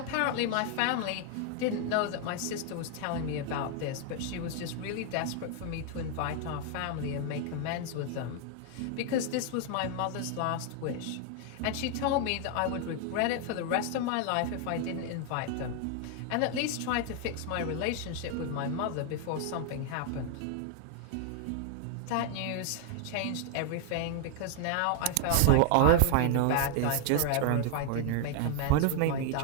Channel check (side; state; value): both; different; correlation 0.00